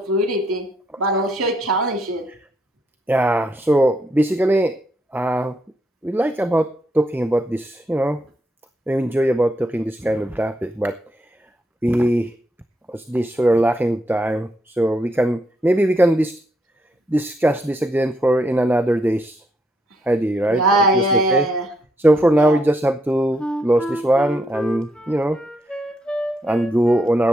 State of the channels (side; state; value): both; normal; correlation 0.77